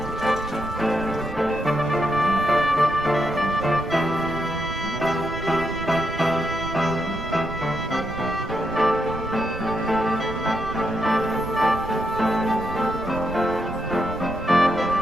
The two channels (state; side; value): noise; right; rumble, 13 dB below the sound